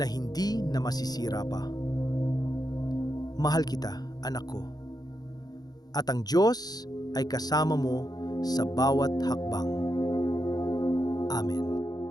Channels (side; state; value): right; late; 0.19 ms